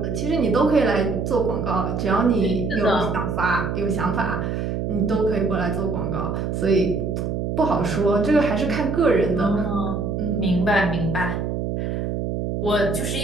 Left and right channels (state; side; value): noise; right; hum, 2 dB below the sound